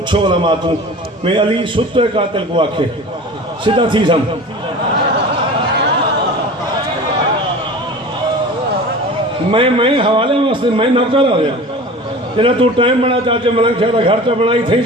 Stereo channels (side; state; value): both; normal; correlation 0.37